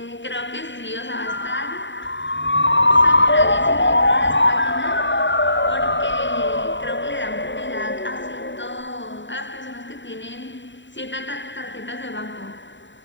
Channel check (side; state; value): right; late; 0.54 ms